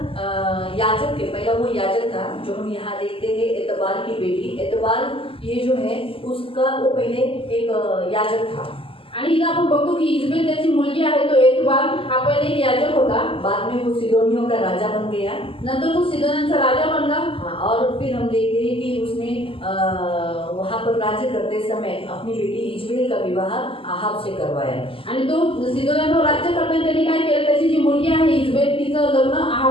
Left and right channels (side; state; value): right; late; 0.26 ms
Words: याजक है, पहला वो याजक था जो हम यहाँ देखते हैं, एतबाल की बेटी। एतबाल ये जो है उसका वो पहले एक याजक था। आणि इथं आपण बघतो की इजबेल त्याची मुलगी आहे, तो एतबाल हा पहिले एक याजक होता, बाद में वो सिदोनियों का राजा बन गया। नंतर तो सिदोन्यांचा राजा बनला। हाँ, और फिर हम देखते हैं कि उसने वहाँ पर राज्य करते समय अपनी बेटी इजबेल का विवाह अहाब से करवाया। आणि तो सिदोन्यांवर राज्य करताना त्यांनी काय केलं, त्याची जी मुलगी आहे इजबेल तिचं लग्न